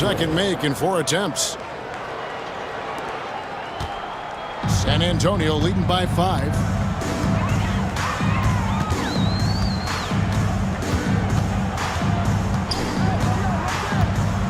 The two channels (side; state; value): both; identical; correlation 1.00